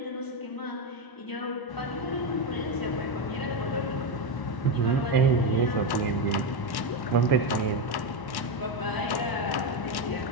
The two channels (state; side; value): late; right; 1.1 ms